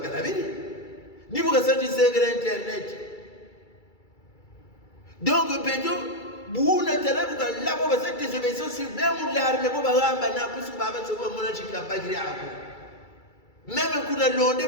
la ni boka santi secret internet donc bedo buna tala boka laba ba santi désobéissance même l'armée boba ramba na puisque baba sobo mona chika bagiri ako même kuna londe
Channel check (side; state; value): right; late; 2.3 ms